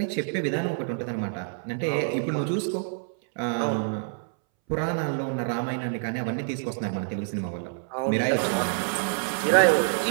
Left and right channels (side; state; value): left; silent; 60 dB below the other